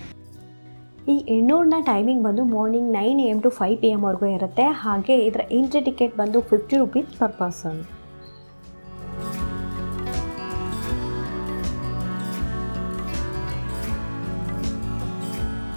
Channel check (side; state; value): both; inverted; correlation -1.00